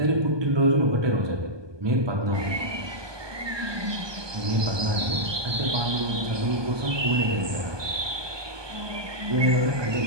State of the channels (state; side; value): late; left; 1.2 ms